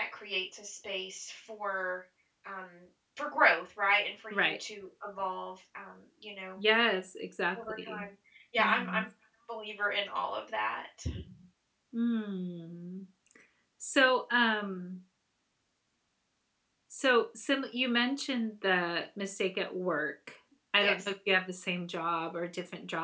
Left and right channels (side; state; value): both; identical; correlation 1.00